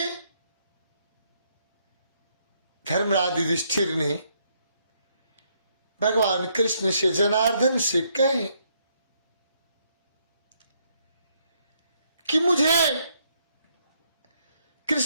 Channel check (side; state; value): both; inverted; correlation -0.73